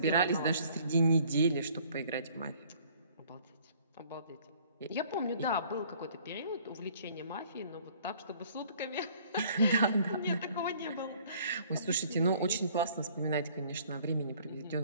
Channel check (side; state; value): both; inverted; correlation -0.57